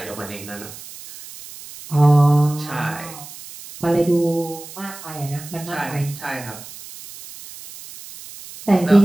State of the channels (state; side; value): noise; right; hiss, 16 dB below the sound